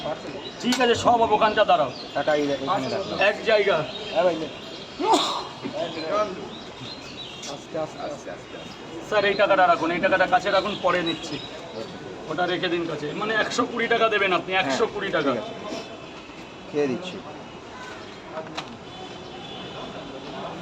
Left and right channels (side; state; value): both; identical; correlation 1.00